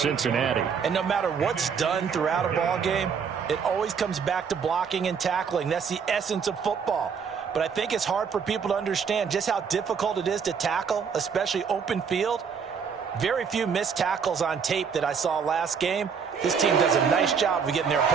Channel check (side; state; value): left; quieter; 6.4 dB